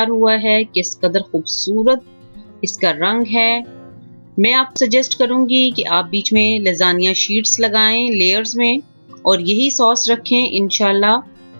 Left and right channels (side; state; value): both; inverted; correlation -1.00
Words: हुआ है। किस कदर खूबसूरत इसका रंग है। मैं आपको सजेस्ट करूंगी कि आप बीच में लेज़ानिया शीट्स लगाएं लेयर्स में और यही सॉस रखें। इंशाल्लाह